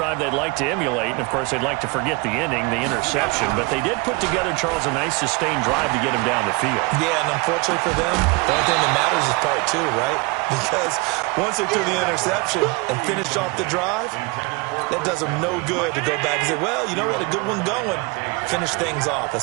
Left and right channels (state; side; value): quieter; left; 26.6 dB